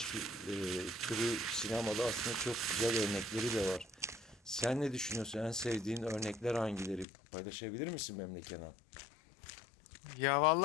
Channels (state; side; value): drops out; right; at 7.1 s